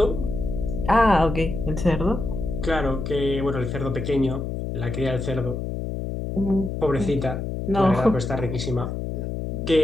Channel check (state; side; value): noise; left; hum, 4 dB below the sound